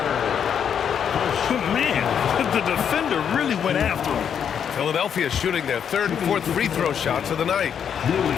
Man, the defender really went after him. Philadelphia shooting their 3rd and 4th free throw shots of the night.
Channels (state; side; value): quieter; right; 8.0 dB